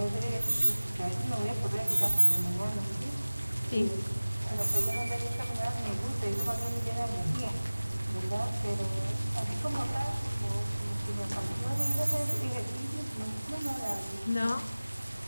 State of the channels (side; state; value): both; inverted; correlation -0.99